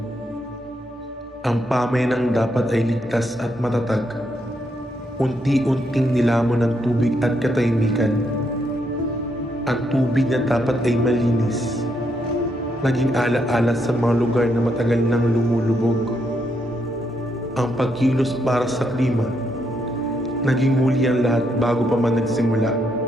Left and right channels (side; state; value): both; normal; correlation 0.77